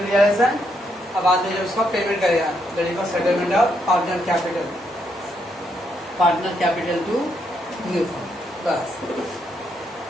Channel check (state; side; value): normal; both; correlation 0.77